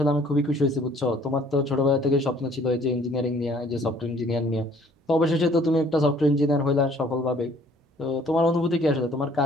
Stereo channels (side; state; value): both; normal; correlation 0.57